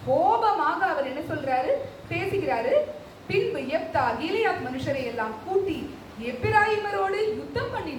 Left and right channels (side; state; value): both; identical; correlation 1.00